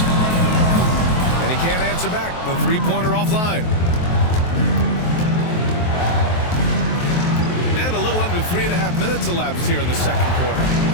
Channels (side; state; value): right; late; 23 ms